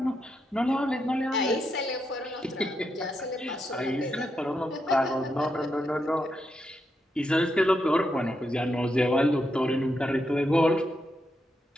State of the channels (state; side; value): normal; both; correlation 0.83